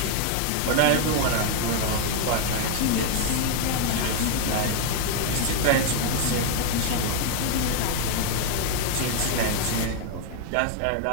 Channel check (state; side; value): different; both; correlation 0.00